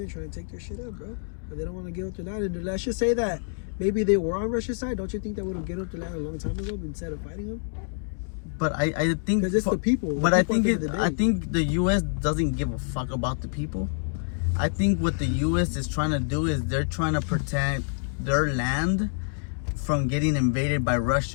trying to take their shit up, bro. And they don't want to give up their land. And let's just say that maybe they were on Russia's side. Don't you think they would have given up their land a long time ago instead of fighting them? But I think because it's the people. But I think the U.S. doesn't give a fuck about the people. I think what the U.S. is trying to do is they're trying to protect their land from getting invaded by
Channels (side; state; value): right; silent; digital silence